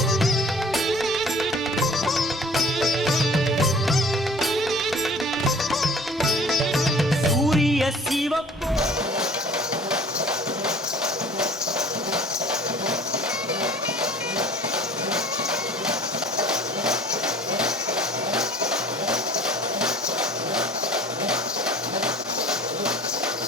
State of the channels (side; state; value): both; normal; correlation 0.48